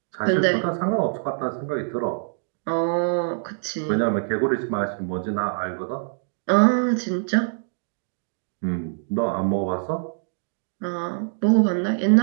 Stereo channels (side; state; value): left; silent; digital silence